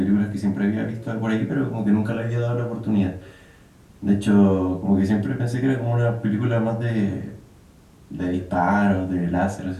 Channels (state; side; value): identical; both; correlation 1.00